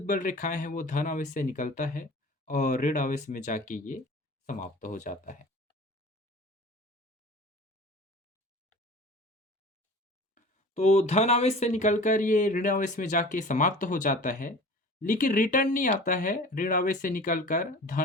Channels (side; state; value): both; normal; correlation 0.41